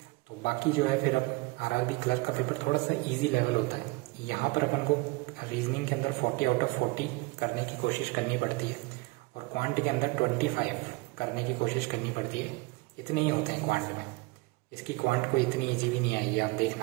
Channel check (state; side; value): quieter; left; 24.0 dB